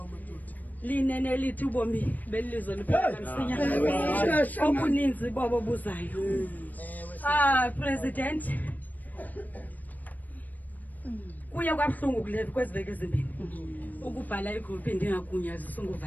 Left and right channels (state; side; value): late; right; 0.083 ms